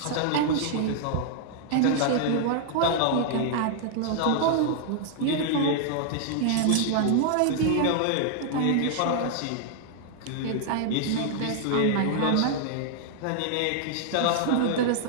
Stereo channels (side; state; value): both; different; correlation 0.00